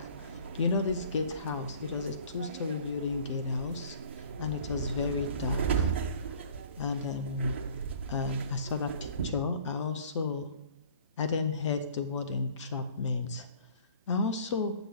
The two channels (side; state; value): both; inverted; correlation -0.49